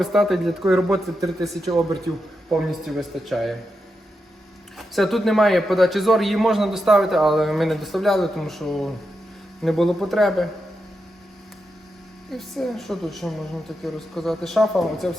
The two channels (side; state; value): both; normal; correlation 0.87